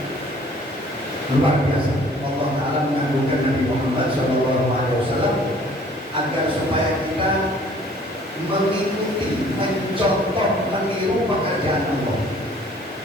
luar biasa Allah Ta'ala mengagungkan Nabi Muhammad SAW agar supaya kita mengikuti, mencontoh, meniru pekerjaan Allah.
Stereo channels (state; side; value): normal; both; correlation 0.54